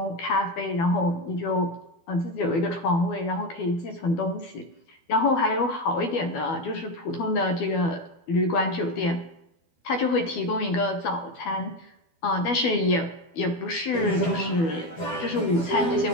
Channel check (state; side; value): late; right; 12 ms